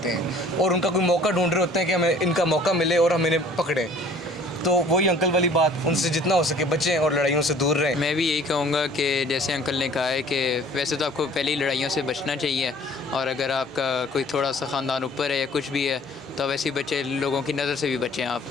हैं और उनका कोई मौका ढूंढ रहे होते हैं कि हमें इनका मौका मिले और हम इन्हें पकड़ें। तो वही अंकल वाली बात, उनसे जितना हो सके बचें और लड़ाइयों से दूर रहें। मैं भी यही कहूँगा कि जैसे अंकल ने कहा है कि वैसे तो आपको पहले ही लड़ाइयों से बचना चाहिए, और अगर आपका कोई थोड़ा सा ख़ानदान ऊपर है या कुछ भी है, तो वैसे ही बच्चे, लोगों की नज़र से भी बचें आप।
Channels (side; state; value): right; noise; hum, 30 dB below the sound